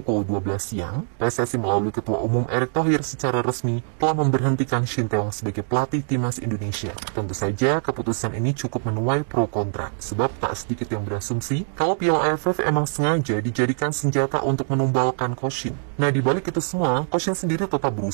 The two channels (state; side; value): silent; left; 63 dB below the other